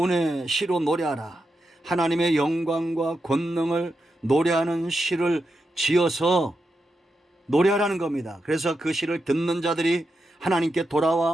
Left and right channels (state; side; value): normal; both; correlation 0.87